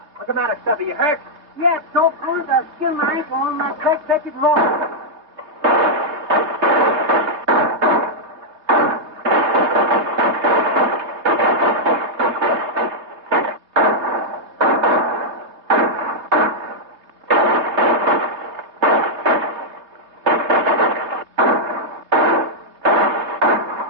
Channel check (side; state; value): left; late; 3.3 ms